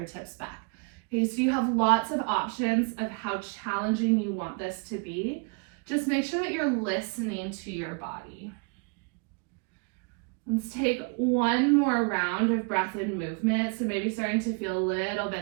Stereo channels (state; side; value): quieter; left; 35.5 dB